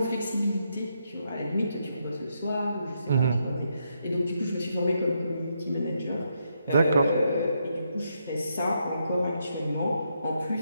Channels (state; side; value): inverted; both; correlation -0.79